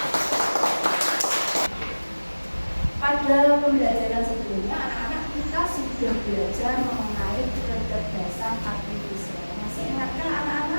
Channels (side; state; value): both; inverted; correlation -1.00